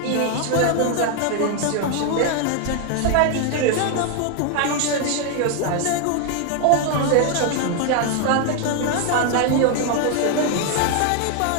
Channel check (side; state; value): both; different; correlation 0.01